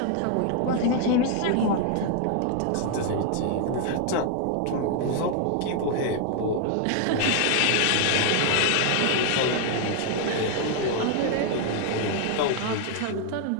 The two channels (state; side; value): different; both; correlation 0.00